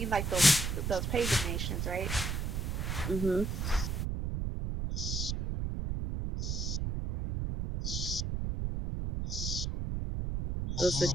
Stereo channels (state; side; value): noise; right; rumble, 1 dB below the sound